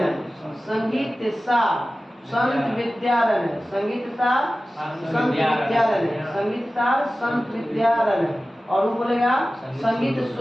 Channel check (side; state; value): both; normal; correlation 0.95